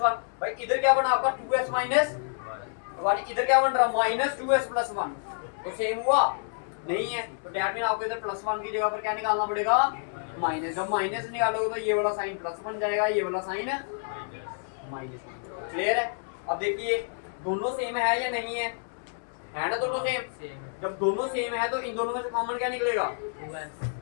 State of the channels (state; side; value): silent; right; 59 dB below the other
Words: भाई इधर क्या बना आपका 2s - 1, इधर क्या बन रहा -2s + 1, तो सेम हुआ नहीं है। तो दैट मीन आपको इधर +1 की जगह पर क्या निकालना पड़ेगा माइनस। जब माइनस निकालोगे तो ये वाला साइन प्लस बन जाएगा, ये वाला साइन माइनस। क्लियर है। अब देखिए दोनों सेम है या नहीं है ना, दोनों सेम। जब दोनों सेम है तो इन दोनों में से कॉमन क्या निकलेगा 2s